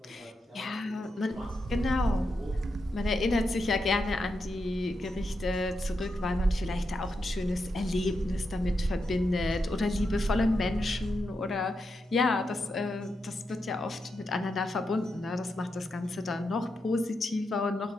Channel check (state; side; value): normal; both; correlation 0.85